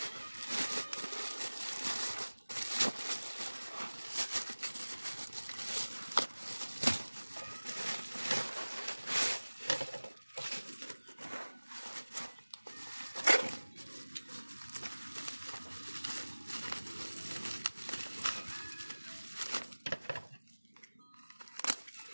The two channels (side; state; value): both; inverted; correlation -1.00